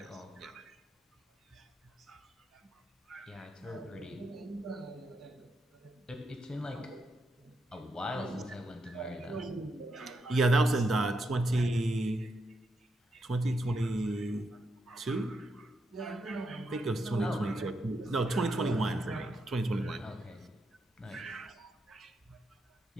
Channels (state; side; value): normal; both; correlation 0.82